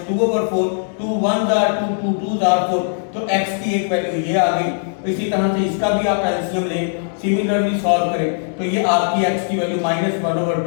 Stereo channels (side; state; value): right; silent; 66 dB below the other